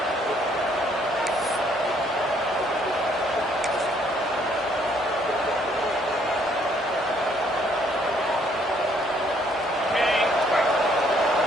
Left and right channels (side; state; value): both; normal; correlation 0.66